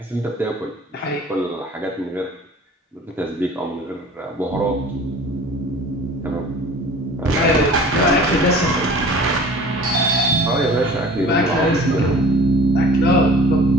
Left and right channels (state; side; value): normal; both; correlation 0.45